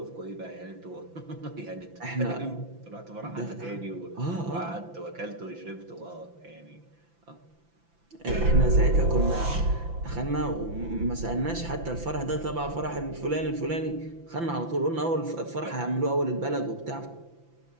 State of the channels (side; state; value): left; late; 5.9 ms